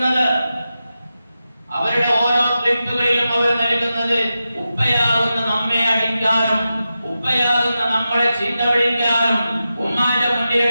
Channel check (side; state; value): both; inverted; correlation -0.91